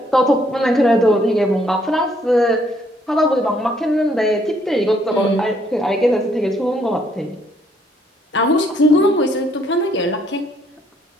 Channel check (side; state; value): both; normal; correlation 0.68